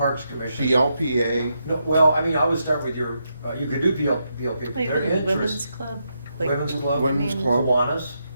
commission. BLPA, No, well, I mean, I would start with you could do BLP, but Like their the women's interest. club? Like- Women's club. Women's club. Kiwanis.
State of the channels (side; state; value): both; inverted; correlation -0.82